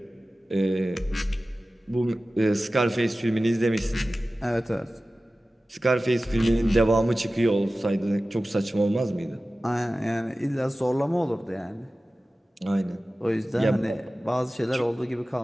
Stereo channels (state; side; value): normal; both; correlation 0.96